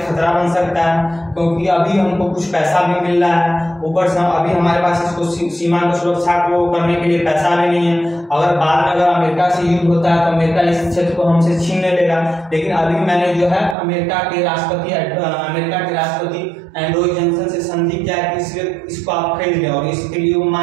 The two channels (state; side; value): drops out; left; at 13.8 s